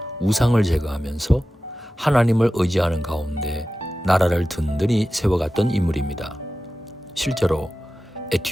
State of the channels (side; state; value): both; normal; correlation 0.94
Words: 우상을 제거하면서 하나님을 의지하는 가운데 나라를 든든히 세워갔던 인물입니다. 실제로